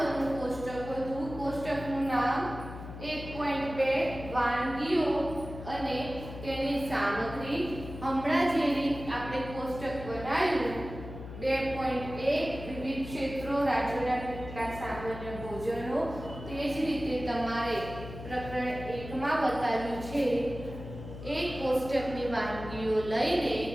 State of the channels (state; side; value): noise; left; hum, 11 dB below the sound